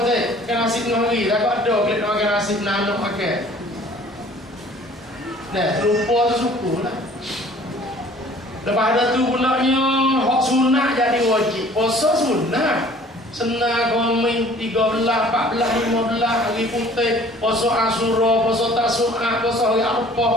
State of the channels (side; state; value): both; normal; correlation 0.52